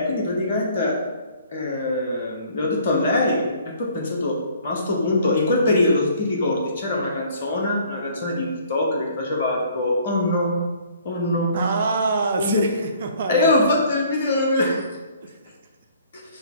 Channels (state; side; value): inverted; both; correlation -0.57